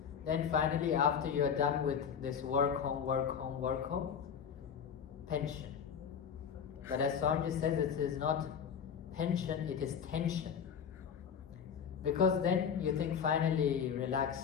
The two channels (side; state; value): right; quieter; 7.4 dB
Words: Then finally, after you are done with this work home, pension. But as Swamiji says, it is not pension, it is tension. Because then you think finally